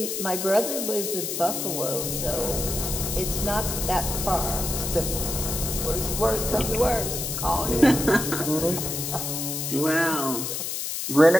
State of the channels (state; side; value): noise; left; hiss, 3 dB below the sound